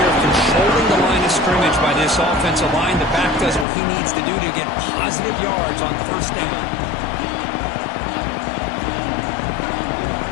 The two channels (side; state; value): right; drops out; at 3.7 s